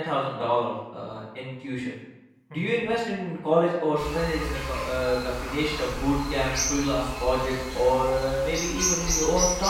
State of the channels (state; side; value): identical; both; correlation 1.00